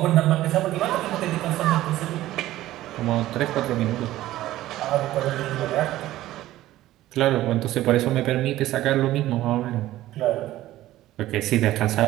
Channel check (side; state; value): left; quieter; 15.1 dB